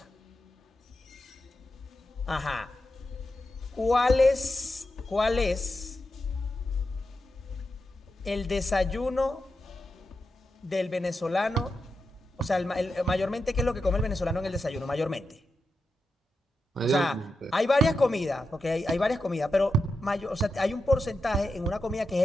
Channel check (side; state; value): both; normal; correlation 0.89